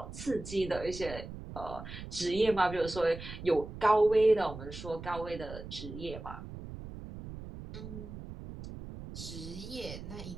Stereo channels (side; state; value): right; noise; rumble, 11 dB below the sound